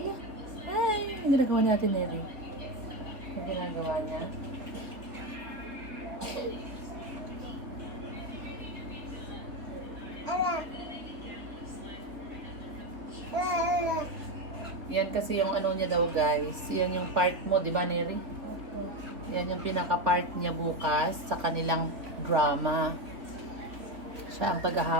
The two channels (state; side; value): late; left; 3.5 ms